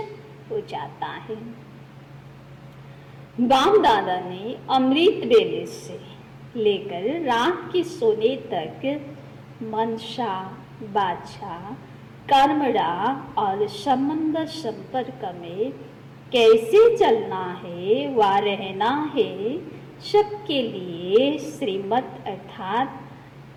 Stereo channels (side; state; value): both; identical; correlation 1.00